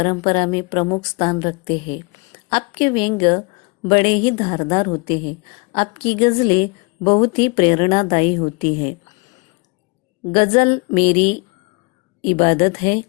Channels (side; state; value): right; quieter; 29.6 dB